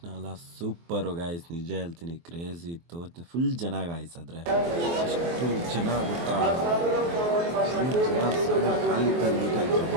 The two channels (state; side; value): late; left; 23 ms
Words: ಎಲ್ಲ ಸೂಪರು ಗಾಯ್ಸ್, ನಿಜ ಹೇಳ್ತೀನಿ, ಕ್ರೇಜಿ ಇತ್ತು. ಫುಲ್ ಜನ ಗಾಯ್ಸ್, ಆದರೆ ಎಷ್ಟು ಜನ ಗೊತ್ತಾ, ಫುಲ್ ಜನ ಖಾಲಿ ನೀಟಾಗಿ